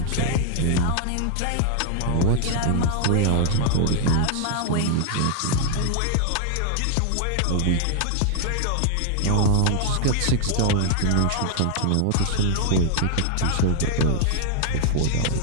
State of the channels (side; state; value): both; different; correlation 0.00